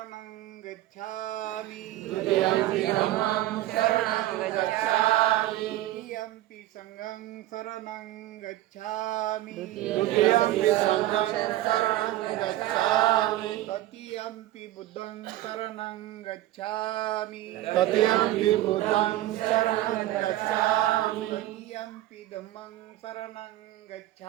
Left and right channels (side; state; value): left; quieter; 15.1 dB